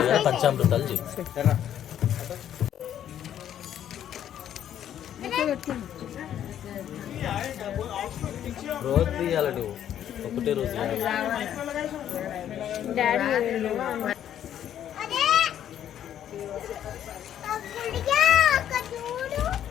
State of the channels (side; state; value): right; quieter; 10.4 dB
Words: పంచామృతాలు చేయి. రోజు తీయాలి నువ్వు, ఒకటే రోజు